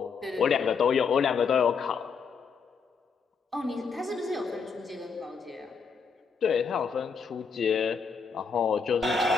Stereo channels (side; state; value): right; quieter; 5.6 dB